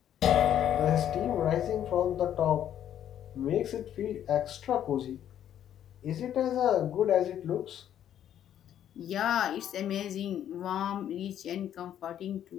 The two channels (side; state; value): right; quieter; 10.5 dB